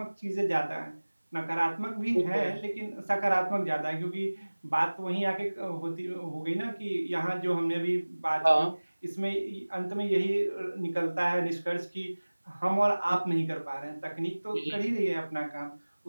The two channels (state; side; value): inverted; both; correlation -1.00